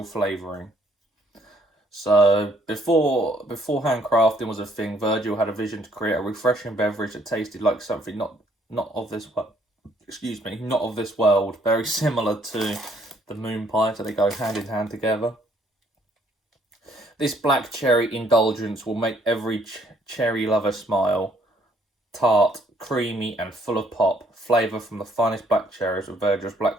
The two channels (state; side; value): normal; both; correlation 0.65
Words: flavouring. So before handcrafting was a thing, Virgil had a vision to create a refreshing beverage that tasted like something not of this world. Excuse me, not of this world. Very similar to the moon pie, so they go hand in hand together. This black cherry indulgence will make every cherry lover smile. Tart, creamy, and full of pop. Flavour from the finest black cherries with Virgil's